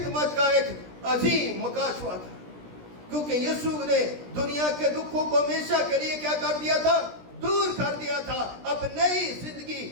کا ایک عظیم مکاشفہ تھا. کیونکہ یسوع نے دنیا کے دکھوں کو ہمیشہ کے لیے کیا کر دیا تھا؟ دور کر دیا تھا. اب نئی زندگی,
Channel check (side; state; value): left; late; 17 ms